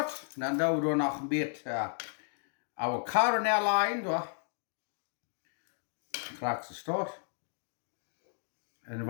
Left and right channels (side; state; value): right; silent; digital silence